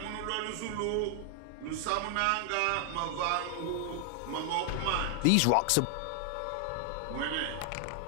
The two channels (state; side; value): different; both; correlation 0.00